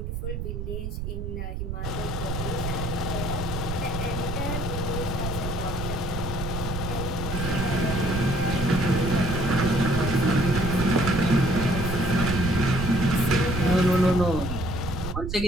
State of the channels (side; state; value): right; noise; rumble, 4 dB below the sound